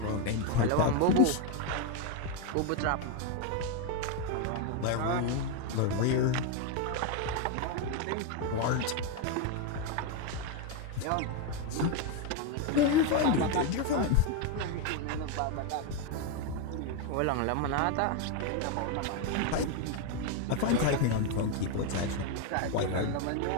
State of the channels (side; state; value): both; different; correlation 0.02